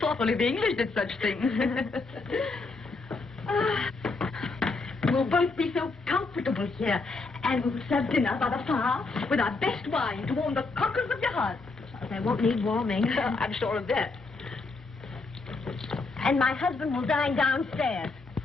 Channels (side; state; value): right; quieter; 3.8 dB